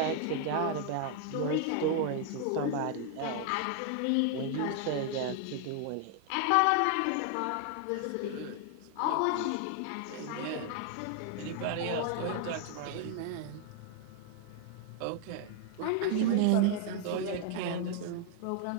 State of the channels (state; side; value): different; both; correlation 0.00